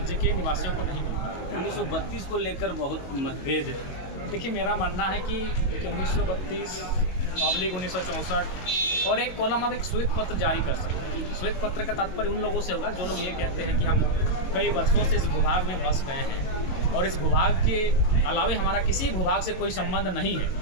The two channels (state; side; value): late; right; 22 ms